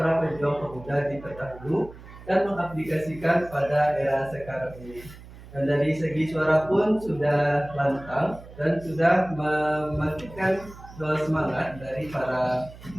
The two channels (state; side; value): noise; right; hum, 18 dB below the sound